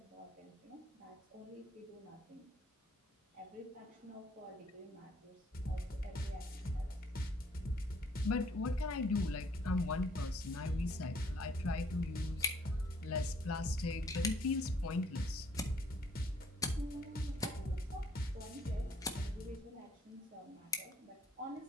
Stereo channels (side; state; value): both; normal; correlation 0.64